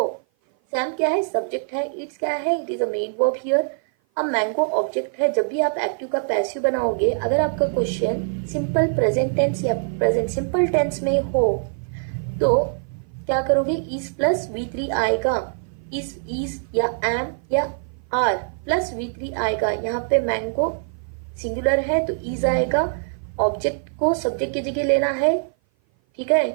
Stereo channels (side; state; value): left; silent; 56 dB below the other